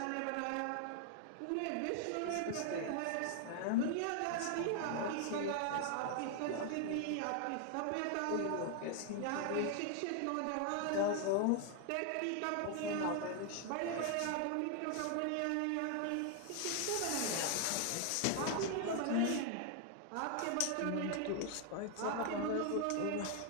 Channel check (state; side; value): different; both; correlation 0.00